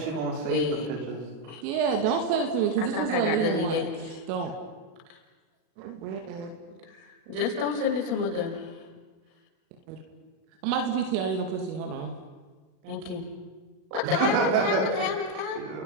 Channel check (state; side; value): late; left; 37 ms